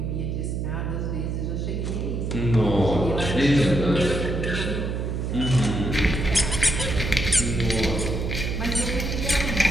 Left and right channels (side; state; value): right; noise; hum, 2 dB below the sound